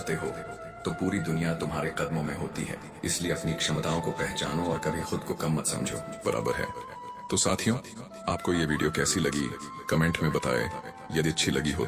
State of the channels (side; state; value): both; identical; correlation 1.00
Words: हो तो पूरी दुनिया तुम्हारे कदमों में होती है। इसलिए अपनी क्षमताओं को पहचानो और कभी खुद को कम मत समझो। बराबर है। तो साथियों, आपको ये वीडियो कैसी लगी कमेंट में बताएं। यदि अच्छी लगी हो